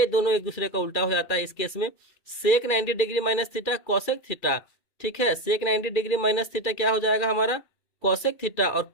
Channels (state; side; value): late; right; 2.3 ms